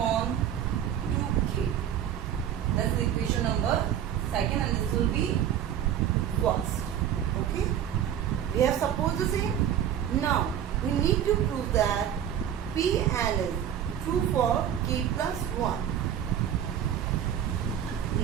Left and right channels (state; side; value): quieter; left; 9.9 dB